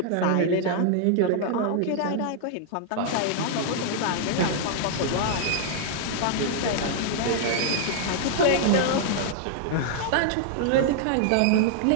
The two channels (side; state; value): both; different; correlation -0.01